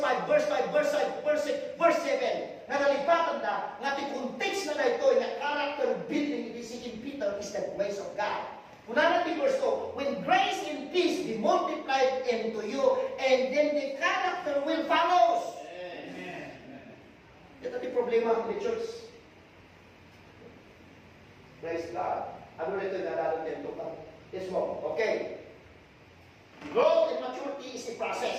5, verse 5, verse 5, verse 6, verse 7. Nga nalipatan na, nga ti context na ito, nga character building in 2 Peter is the grace of God. Una natin verse 2, when grace and peace be multiplied into you, and then the character will follow. Amen. Ito yung problema ng church. Praise God. Ano na ito yung nararamdaman ito? Yes mo. Okay. Growth and maturity is a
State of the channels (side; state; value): both; identical; correlation 1.00